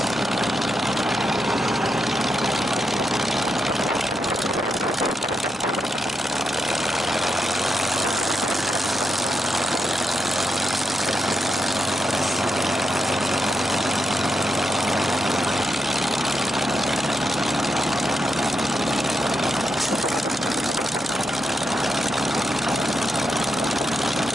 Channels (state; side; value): normal; both; correlation 0.84